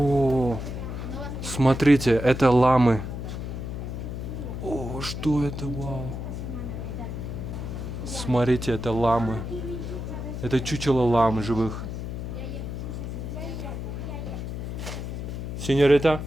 смотрите, это ламы. О, что это, вау. Смотрите, это ламы. Это чучело лам живых. Señorita,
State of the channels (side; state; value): left; noise; hum, 6 dB below the sound